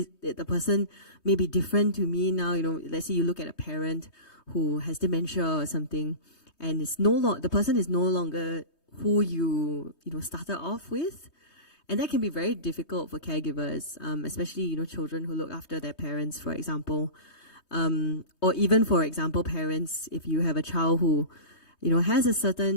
the person may be different to me now? Let's say you look at a parent who has dementia or something, and the person is no longer who you started off with. And that can be very difficult for caregivers, especially, children who look after their parents, for example. Or even, for example, parents, if you have a child who, has a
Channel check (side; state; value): right; late; 3.2 ms